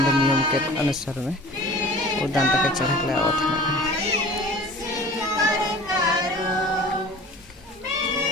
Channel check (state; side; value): normal; both; correlation 0.43